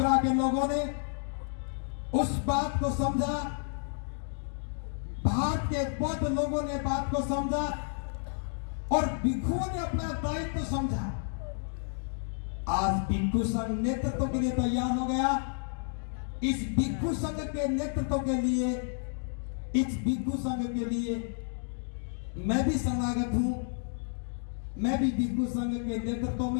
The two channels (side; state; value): right; silent; digital silence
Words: के लोगों ने उस बात को समझा, भारत के बौद्ध लोगों ने बात को समझा, और भिक्षुओं ने अपना दायित्व समझा। आज भिक्षु संघ नेतृत्व के लिए तैयार हो गया। इस भिक्षु संघ के नेतृत्व के लिए, इस भिक्षु संघ के लिए मैं भी शरणागत हूं। मैं भी भिक्षु संघ के नेतृत्व